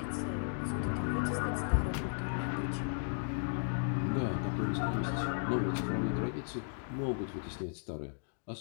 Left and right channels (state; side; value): silent; right; digital silence